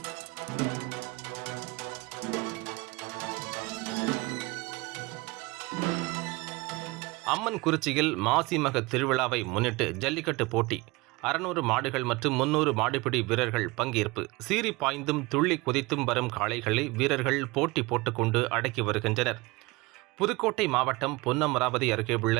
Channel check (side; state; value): left; quieter; 23.4 dB